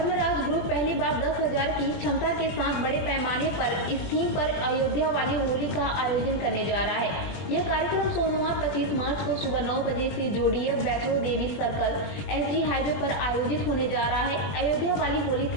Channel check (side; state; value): right; late; 20 ms